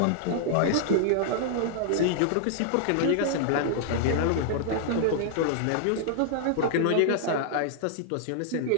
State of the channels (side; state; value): both; different; correlation -0.01